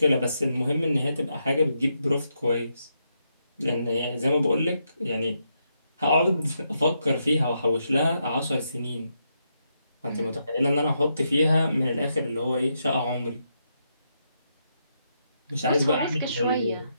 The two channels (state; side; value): inverted; both; correlation -0.81